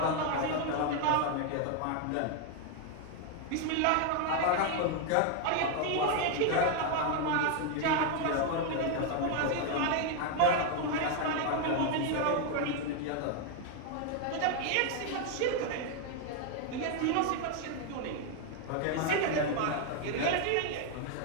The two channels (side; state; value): both; different; correlation 0.01